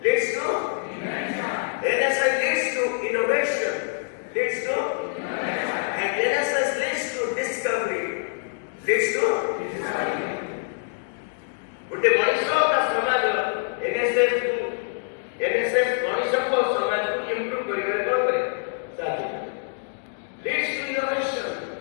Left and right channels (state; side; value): silent; right; digital silence